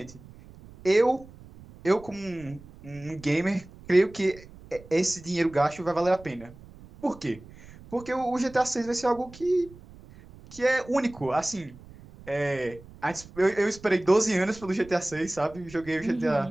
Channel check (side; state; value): right; noise; rumble, 20 dB below the sound